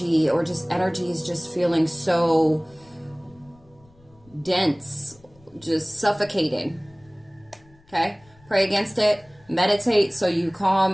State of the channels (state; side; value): noise; left; rumble, 29 dB below the sound